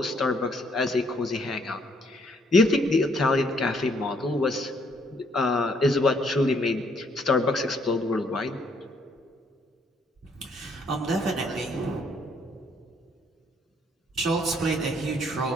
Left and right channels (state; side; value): normal; both; correlation 0.68